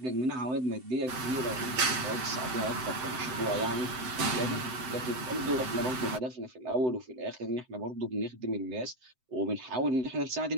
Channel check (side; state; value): left; late; 7.8 ms